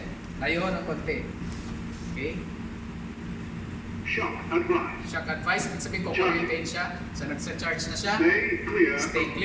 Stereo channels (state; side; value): identical; both; correlation 1.00